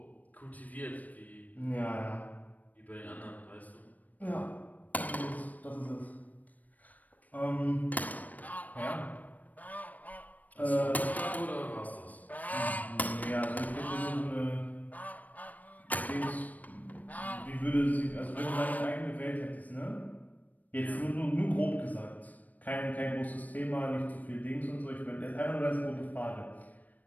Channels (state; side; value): late; right; 0.076 ms